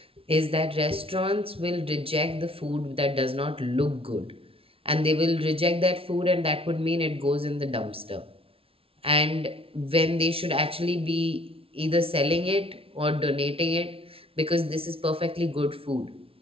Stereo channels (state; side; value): late; left; 0.26 ms